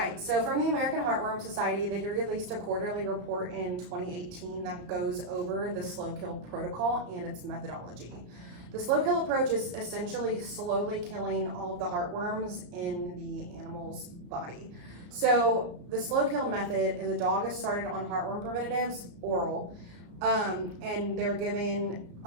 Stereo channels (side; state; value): left; late; 34 ms